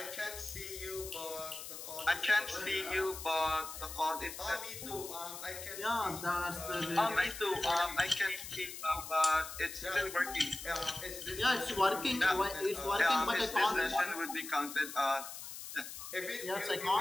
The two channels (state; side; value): noise; left; hiss, 10 dB below the sound